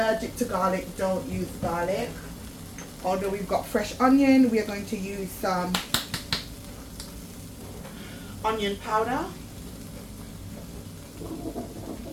to garlic, don't use garlic. Although we've got fresh onion, we are going to use some onion powder.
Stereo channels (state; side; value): identical; both; correlation 1.00